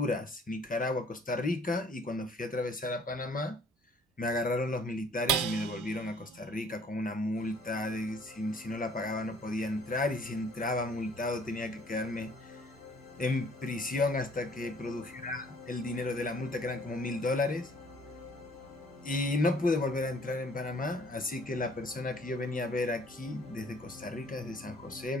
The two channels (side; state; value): both; normal; correlation 0.57